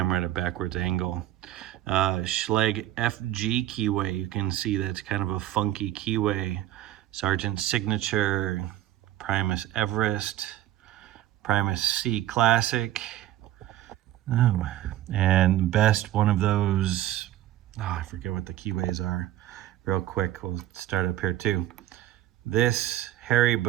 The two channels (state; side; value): quieter; left; 13.4 dB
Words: at a backwards angle. Schlage FG keyway, you can see that's kind of a funky keyway. Sargent's Signature, Primus Everest, Primus C Classic. Oh, and best one of those, I forget what the keyways are. Real quick, we'll start up here too. This Harry